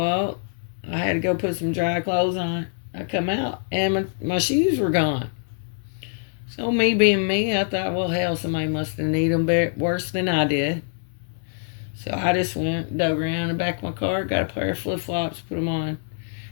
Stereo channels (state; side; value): silent; right; digital silence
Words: I had to go put some dry clothes on. I come out, and my shoes were gone. So me being me, I thought, well, hell, somebody must have needed them worse than I did. So I just went, dug around the back of my car, got a pair of flip-flops, put them on.